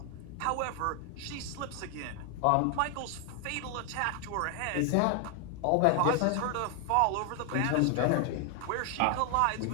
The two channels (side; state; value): both; different; correlation 0.00